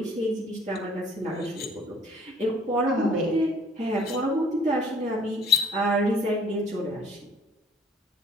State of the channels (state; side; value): normal; both; correlation 0.57